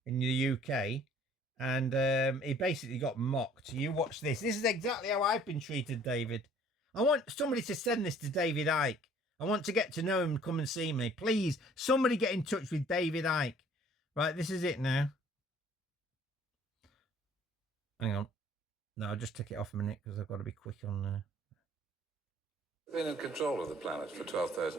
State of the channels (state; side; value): normal; both; correlation 0.55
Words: in the UK. And he basically got mocked. You watch this. This is exactly how I've been treated, David. I want somebody to send this to David Icke. I want to get to know him and come and see me. Please, somebody get in touch with David Icke. Right, this is it now. Hang on. No, I'll just take it off a minute because I've got to be quick on there. Been in control of the planet for